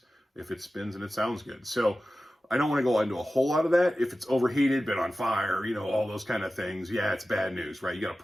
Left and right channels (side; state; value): both; normal; correlation 0.95